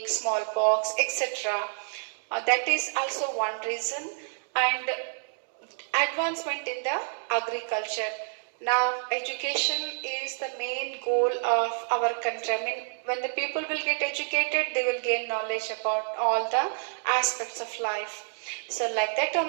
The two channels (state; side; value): silent; left; digital silence